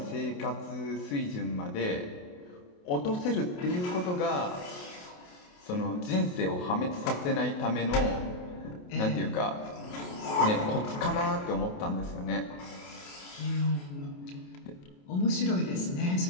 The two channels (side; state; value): right; late; 28 ms